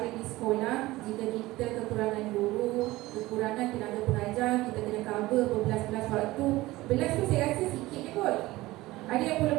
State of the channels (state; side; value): quieter; left; 18.6 dB